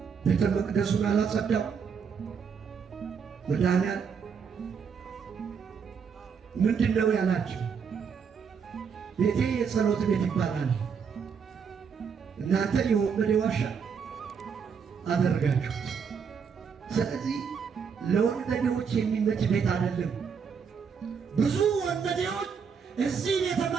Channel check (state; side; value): quieter; left; 6.4 dB